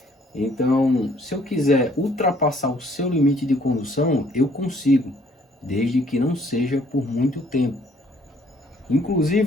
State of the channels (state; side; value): normal; both; correlation 0.62